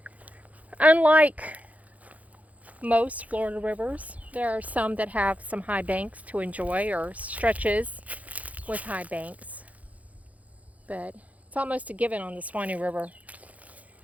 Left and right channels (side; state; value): left; late; 0.071 ms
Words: Unlike most Florida rivers, there are some that have some high banks to enjoy, or stretches with high banks. But it's almost a given on the Suwannee River